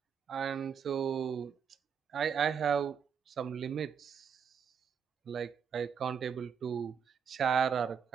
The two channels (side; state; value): left; quieter; 7.2 dB